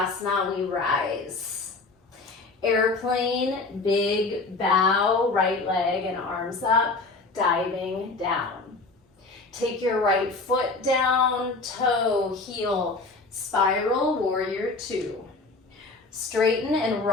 we rise. Airplane, big bow, right leg and arms up, diving down. Take your right foot down, toe, heel, spiral, warrior two. Straighten and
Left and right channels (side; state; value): right; quieter; 3.6 dB